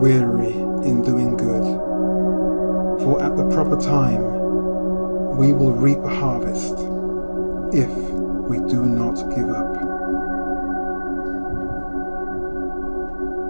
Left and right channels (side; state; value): both; inverted; correlation -1.00